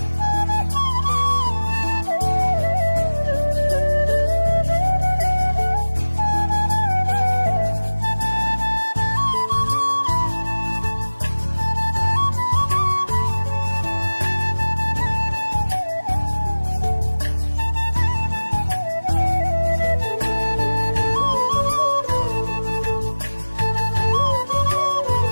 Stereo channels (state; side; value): inverted; both; correlation -1.00